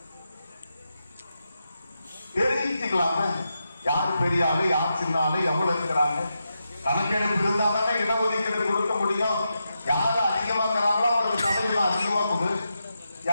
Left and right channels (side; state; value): both; inverted; correlation -0.87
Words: தெரிவிச்சுக்கலாம யார் பெரிய ஆளு யார் சின்ன ஆளு எவ்வளவு இருக்கிறாங்க. கணக்கெடுப்பு இருந்தா தானே இடஒதுக்கீடு கொடுக்க முடியும். யாரு அதிகமாக்குறாங்களோ அவருக்கு சதவீதம் அதிகமா கொடு,